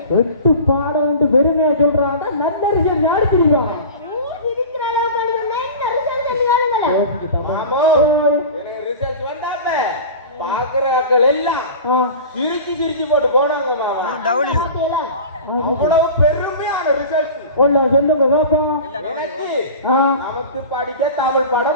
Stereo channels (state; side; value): inverted; both; correlation -0.35